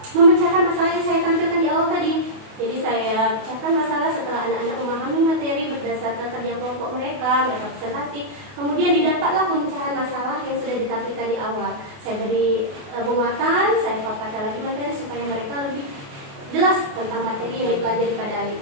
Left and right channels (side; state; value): left; late; 28 ms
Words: memecahkan masalah yang saya tampilkan di awal tadi. Jadi saya pecahkan masalah setelah anak-anak memahami materi berdasarkan kerja kelompok mereka presentasi. Kemudian didapatlah pemecahan masalah yang sudah ditampilkan di awal. Saya beri penguatan, saya paparkan lagi materi supaya mereka lebih jelas tentang materi yang dipelajari